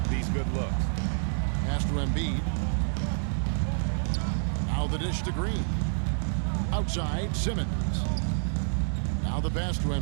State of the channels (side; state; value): left; silent; 59 dB below the other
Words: these good looks. Pass to Embiid. Now the dish to Green. Outside Simmons. Now the pass to